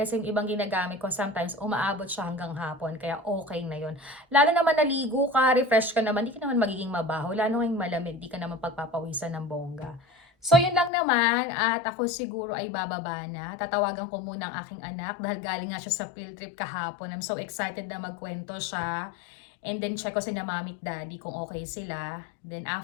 yung ibang ginagamit ko sometimes umaabot siya hanggang hapon. Kaya okay na yun. Lalo naman naligo ka, refresh ka naman, di ka naman magiging mabaho. Lalo ngayong malamig, di ka naman pagpapawisan ng bongga. So, yun lang naman at ako siguro ay bababa na. Tatawagan ko muna ang aking anak dahil galing nga siya sa field trip kahapon. I'm so excited na magkwento siya. And then, check ko si na mami at daddy kung okay sila. Then,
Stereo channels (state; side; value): drops out; right; at 10.9 s